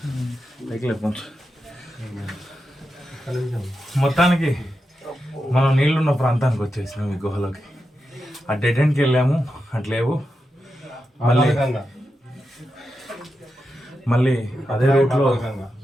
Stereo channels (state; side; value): normal; both; correlation 0.88